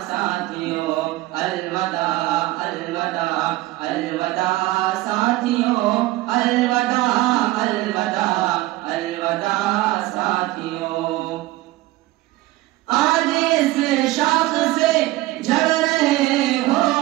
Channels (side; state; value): left; quieter; 18.0 dB